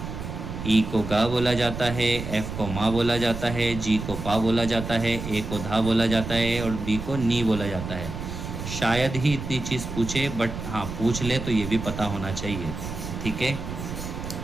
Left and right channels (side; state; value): right; noise; rumble, 7 dB below the sound